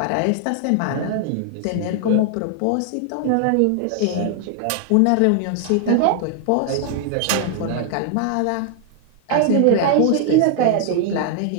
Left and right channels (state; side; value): different; both; correlation 0.00